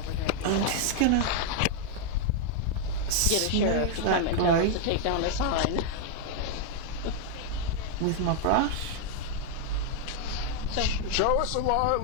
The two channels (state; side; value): different; both; correlation 0.00